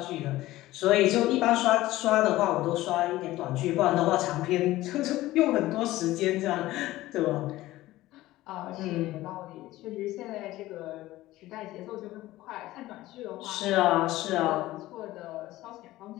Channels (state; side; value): quieter; right; 16.7 dB